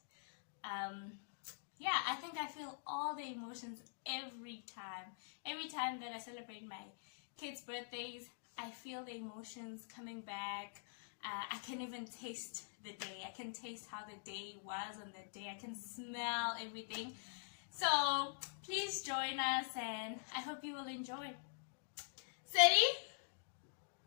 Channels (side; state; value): right; silent; digital silence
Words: Yeah, I think I feel all the emotions every time that I celebrate my kids' birthdays. I feel the emotions coming back. I can even taste the day. I can taste how the day was on that day. I can smell everything. So please join us and I hope you will enjoy. Steady?